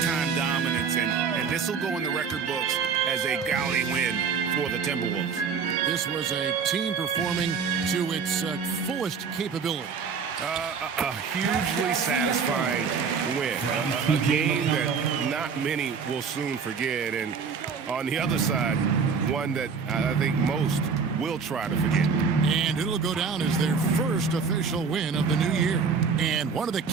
dominance, and this will go in the record books as a gaudy win for the Timberwolves. This was a team performing to its fullest capability. A hugely satisfying win. A game that not many will soon forget, and on the other side, one that I think most will try to forget. And it'll go down as their first official win of the new year. And one of the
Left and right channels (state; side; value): quieter; left; 5.7 dB